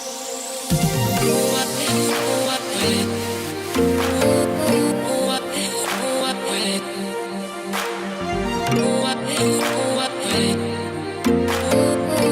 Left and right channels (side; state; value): both; identical; correlation 1.00